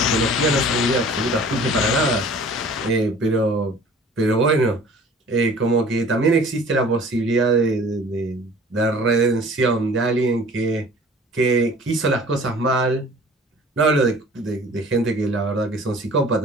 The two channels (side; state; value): both; normal; correlation 0.48